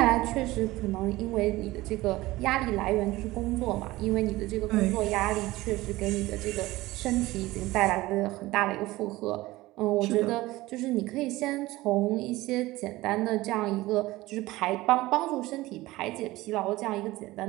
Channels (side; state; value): left; quieter; 18.6 dB